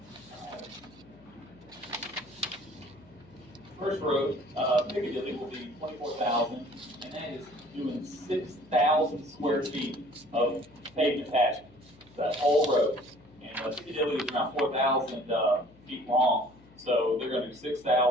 Piccadilly will be 24,000, and that is doing 6,000 square feet of pavement patching, that whole road. And Piccadilly is around 4,000 feet long, so they're going to do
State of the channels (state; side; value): noise; left; hum, 26 dB below the sound